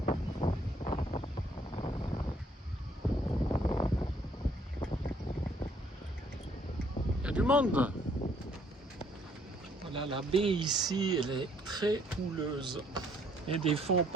Du monde. Voilà, la baie ici, elle est très houleuse. Et des fois, on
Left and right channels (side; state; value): both; normal; correlation 0.64